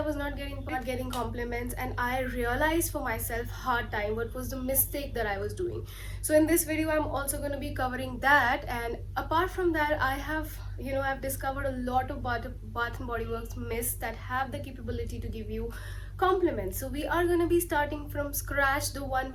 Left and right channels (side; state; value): both; identical; correlation 1.00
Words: was not getting compliments, and I realized for myself hard time what was the mistake that I was doing. So in this video, I'm also going to be covering that, and apart from that, I have I've discovered a lot of Bath and Body Works mists that have the capability to give you compliments. So we are going to be starting from scratch, the one